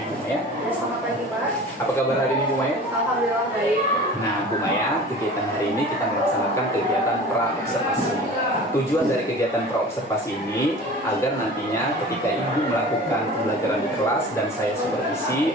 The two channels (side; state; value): both; normal; correlation 0.40